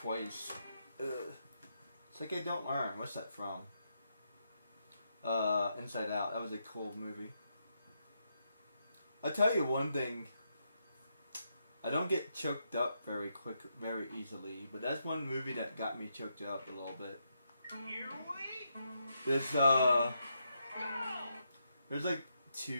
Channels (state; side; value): inverted; both; correlation -0.81